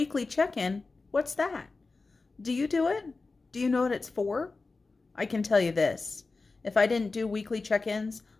check-in, what's that? Do you do it? Do you know what it's for? I can tell you this. If I didn't do weekly check-ins,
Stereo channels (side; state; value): right; quieter; 3.8 dB